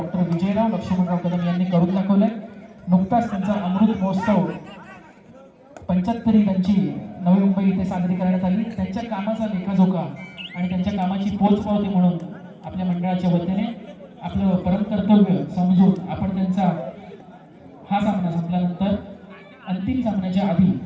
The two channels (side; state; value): both; identical; correlation 1.00